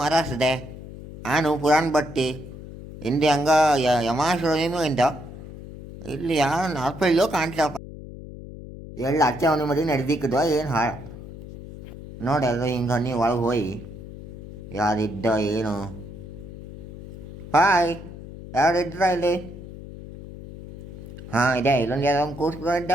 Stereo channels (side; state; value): left; noise; hum, 13 dB below the sound